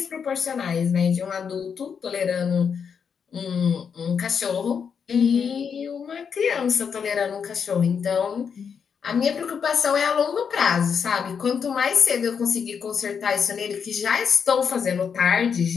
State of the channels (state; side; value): quieter; right; 6.7 dB